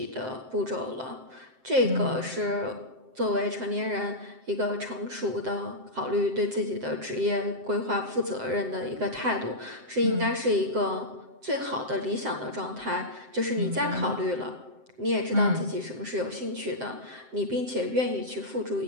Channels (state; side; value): late; left; 7.7 ms